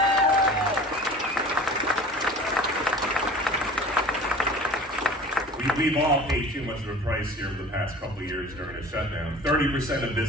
We've all paid too much of a price here over the past couple of years during a shutdown. 30% of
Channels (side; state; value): both; normal; correlation 0.42